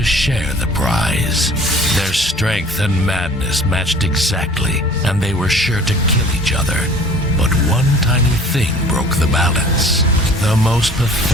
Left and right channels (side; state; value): both; normal; correlation 0.49